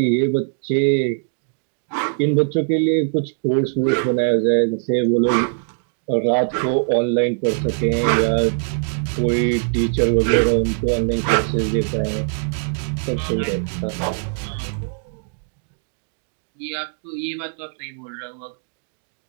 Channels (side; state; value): left; silent; digital silence